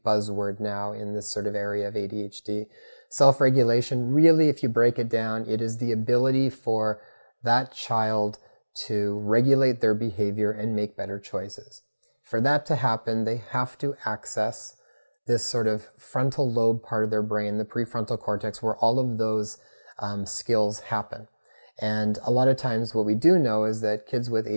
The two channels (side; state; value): both; inverted; correlation -1.00